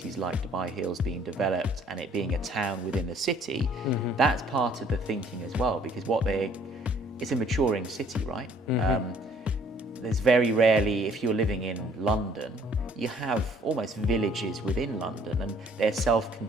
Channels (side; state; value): both; normal; correlation 0.59